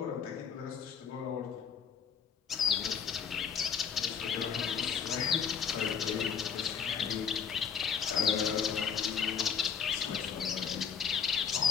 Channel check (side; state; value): right; quieter; 7.1 dB